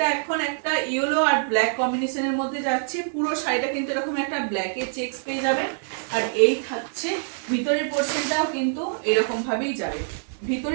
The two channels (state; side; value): silent; left; digital silence